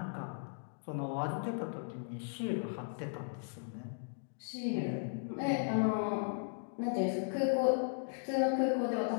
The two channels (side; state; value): right; silent; digital silence